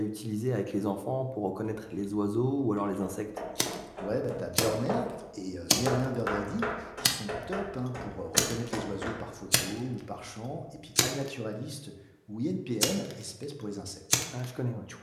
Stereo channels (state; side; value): identical; both; correlation 1.00